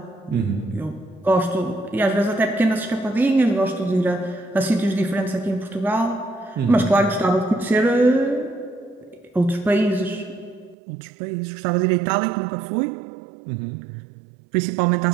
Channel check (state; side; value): drops out; left; at 10.8 s